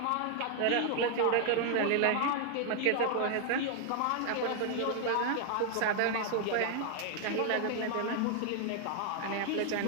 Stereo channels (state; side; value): different; both; correlation 0.00